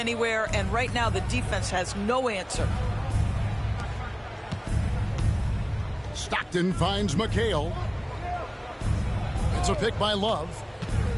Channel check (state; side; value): identical; both; correlation 1.00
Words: and right now the defense has no answer. Stockton finds McHale. It's a pick by Love.